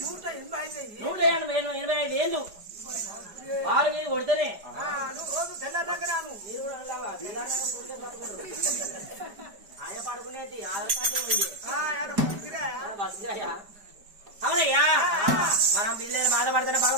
185 ఏళ్ళు వారి మీద కొడితేనే ఆయన పడుకునేది ఆధార్ కార్డు బస్సుగా అవునయ్యా మనం బిల్లు బాధపడతానే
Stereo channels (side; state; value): left; late; 5.0 ms